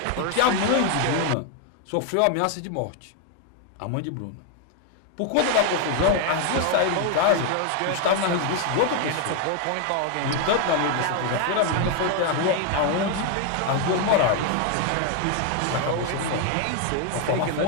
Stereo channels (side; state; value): both; different; correlation 0.01